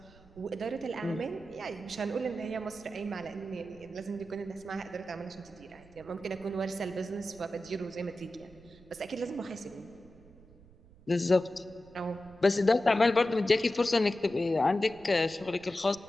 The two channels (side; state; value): right; noise; rumble, 24 dB below the sound